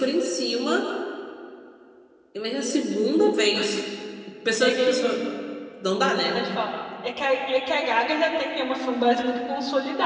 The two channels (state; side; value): identical; both; correlation 1.00